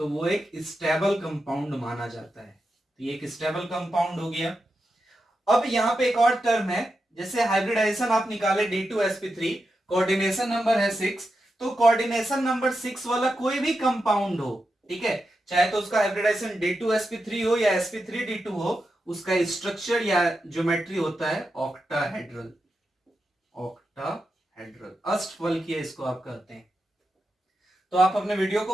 वो एक स्टेबल कंपाउंड माना जाता है। तो ये एक स्टेबल कंपाउंड हो गया। अब यहां पे एक और टर्म है, जैसे हाइब्रिडाइजेशन आप निकाले D2sp3, कोऑर्डिनेशन नंबर है 6, तो कोऑर्डिनेशन नंबर 6 वाला कोई भी कंपाउंड हो, ठीक है, चाहे तो उसका हाइब्रिडाइजेशन D2sp3 हो या sp3d2 हो, उसका स्ट्रक्चर या ज्योमेट्री होता है ऑक्टाहेड्रल, ऑक्टाहेड्रल, अष्टफल किया इसको आप कहते हैं। तो आप अपने वीडियो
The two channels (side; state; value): both; normal; correlation 0.88